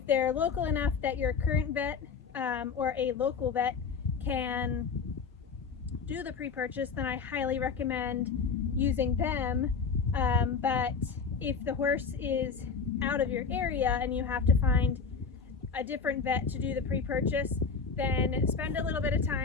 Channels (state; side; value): quieter; right; 5.5 dB